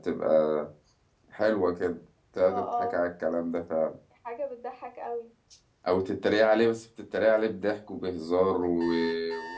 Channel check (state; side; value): identical; both; correlation 1.00